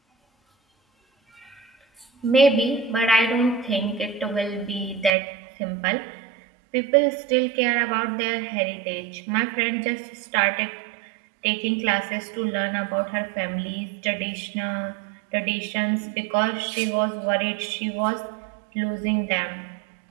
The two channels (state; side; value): drops out; left; at 5.1 s